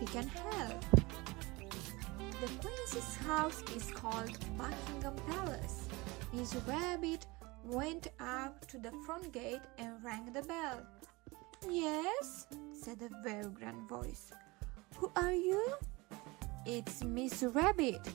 can help. The Queen's house is called Buckingham Palace. Miss Rabbit went up to the front gate and rang the bell. Yes, said a very grand voice. Who are you? It's Miss Rabbit,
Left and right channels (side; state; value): left; quieter; 23.6 dB